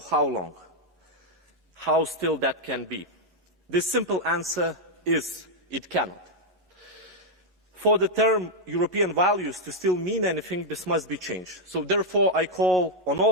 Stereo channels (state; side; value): normal; both; correlation -0.01